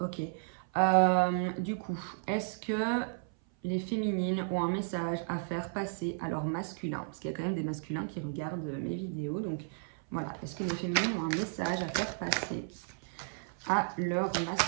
Du coup, est-ce que les féminines ont un message à faire passer à leur masculin? Parce qu'il y a quand même des masculins qui regardent mes vidéos. Donc, voilà. Est-ce que les féminines ont un message à faire passer à leur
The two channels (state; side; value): silent; left; 55 dB below the other